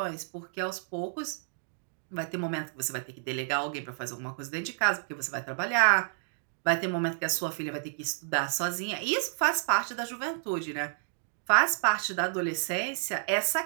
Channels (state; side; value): silent; left; digital silence